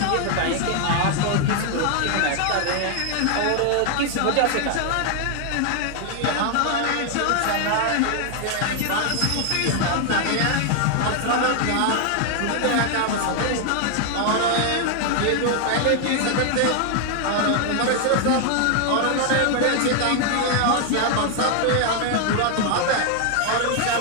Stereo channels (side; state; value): both; different; correlation 0.00